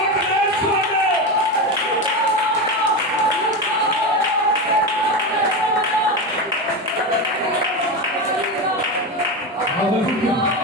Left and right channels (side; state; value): both; normal; correlation 0.18